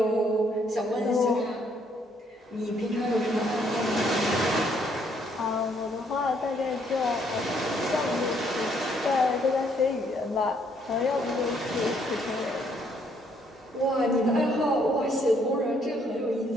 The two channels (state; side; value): normal; both; correlation 0.68